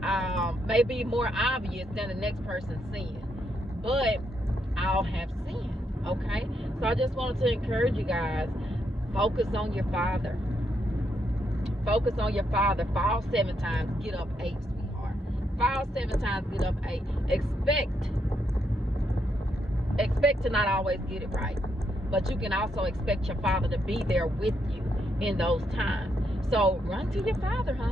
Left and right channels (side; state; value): both; normal; correlation 0.78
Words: may be more obvious than the next person's sin, but all have sinned. Okay, so I just wanted to encourage you guys, focus on your Father. Focus on your Father. Fall 7 times, get up 8, sweetheart. Fall 7 times, get up 8. Expect to not always get it right, but you can also expect your Father to be there with you in those times. So run to your Father,